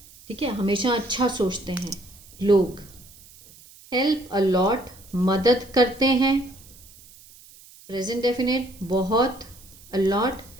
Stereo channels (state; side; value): noise; right; hiss, 23 dB below the sound